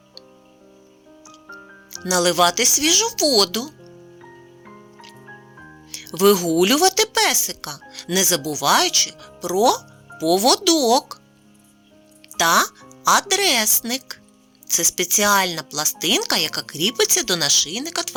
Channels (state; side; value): identical; both; correlation 1.00